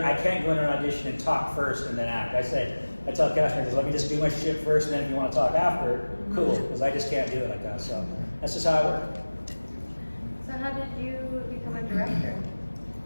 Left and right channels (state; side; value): inverted; both; correlation -1.00